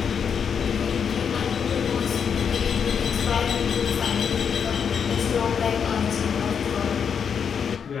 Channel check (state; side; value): quieter; right; 7.0 dB